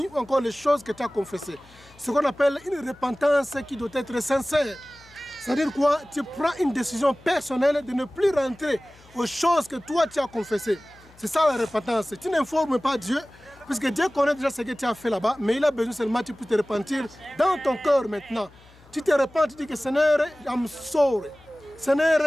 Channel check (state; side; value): noise; left; hum, 26 dB below the sound